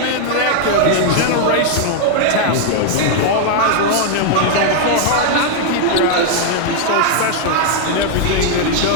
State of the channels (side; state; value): both; different; correlation 0.00